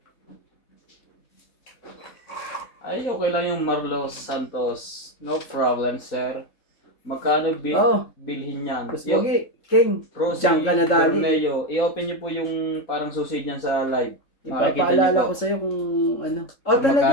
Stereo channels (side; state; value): right; late; 3.7 ms